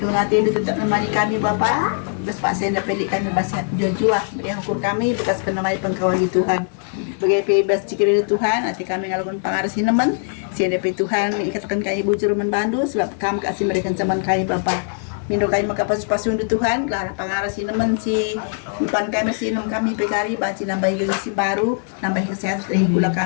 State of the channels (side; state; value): right; silent; 59 dB below the other